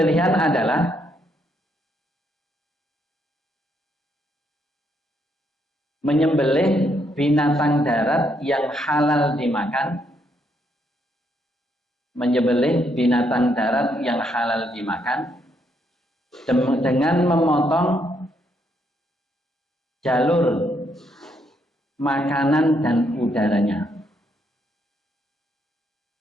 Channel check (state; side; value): normal; both; correlation 0.75